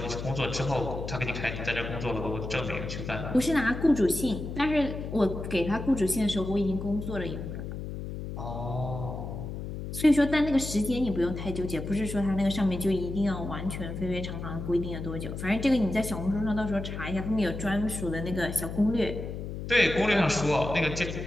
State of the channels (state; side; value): noise; left; hum, 7 dB below the sound